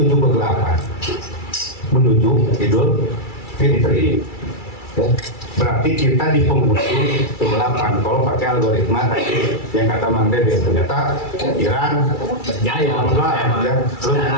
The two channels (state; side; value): late; right; 2.3 ms